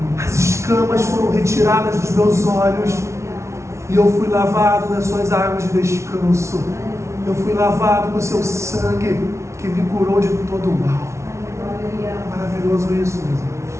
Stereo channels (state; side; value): late; left; 0.13 ms